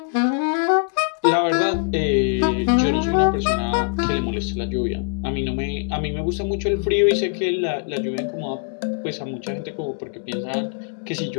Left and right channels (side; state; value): right; silent; digital silence